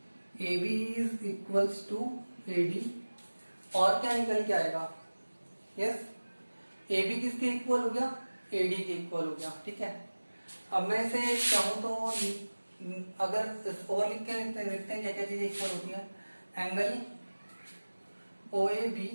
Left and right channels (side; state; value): both; inverted; correlation -1.00